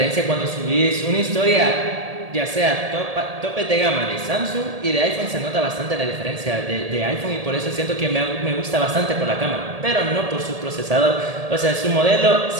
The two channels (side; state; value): left; late; 1.8 ms